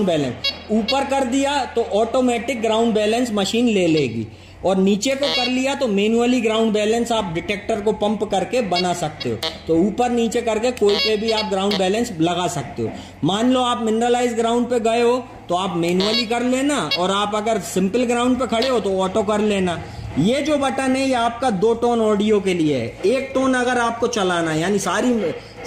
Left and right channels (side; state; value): both; identical; correlation 1.00